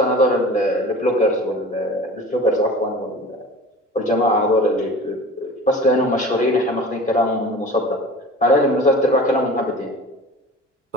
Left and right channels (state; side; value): normal; both; correlation 0.39